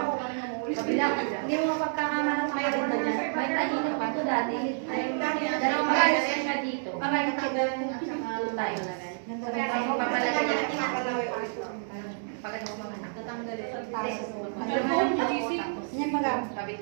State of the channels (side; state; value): left; silent; digital silence